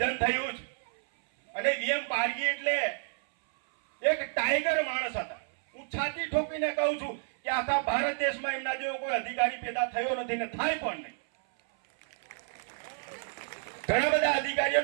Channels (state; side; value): silent; left; 58 dB below the other